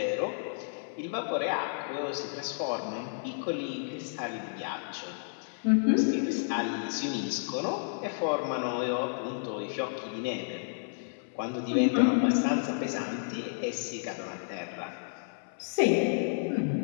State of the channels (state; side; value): silent; right; 57 dB below the other